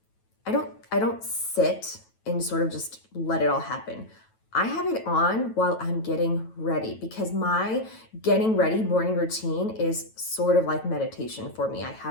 I don't sit and sort of just let it all happen. I have it on while I'm getting ready, because my getting ready morning routine is sort of like meditation for me. I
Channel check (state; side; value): late; right; 9.1 ms